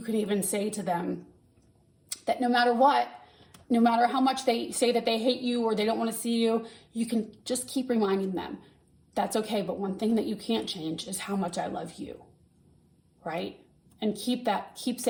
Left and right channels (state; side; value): identical; both; correlation 1.00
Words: can even say to them that no matter what, no matter how much they say that they hate you or they don't want to see you, you can just keep reminding them that's okay. But one thing that you can't change is how much I love you, right? And keep